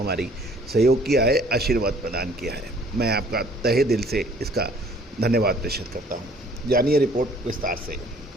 सहयोग किया है, आशीर्वाद प्रदान किया है। मैं आपका तहे दिल से इसका धन्यवाद प्रेषित करता हूं। जानिए रिपोर्ट विस्तार से।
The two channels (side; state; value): both; normal; correlation 0.57